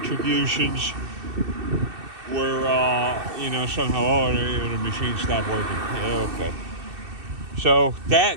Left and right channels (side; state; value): left; late; 2.6 ms